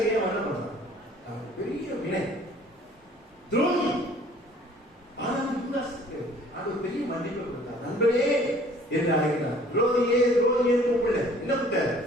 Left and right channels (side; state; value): both; normal; correlation 0.54